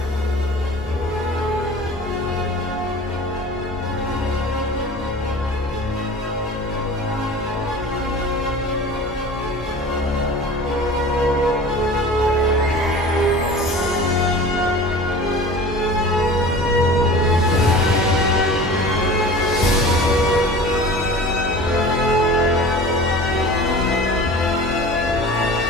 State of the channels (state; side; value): normal; both; correlation 0.39